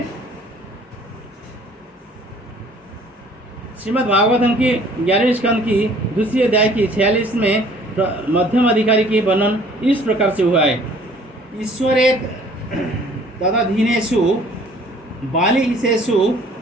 श्रीमद् भागवतम की 11वें स्कंद की दूसरी अध्याय की 46 में मध्यम अधिकारी की वर्णन इस प्रकार से हुआ है, ईश्वरे तदधीनेषु बालिशेषु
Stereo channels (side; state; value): both; normal; correlation 0.55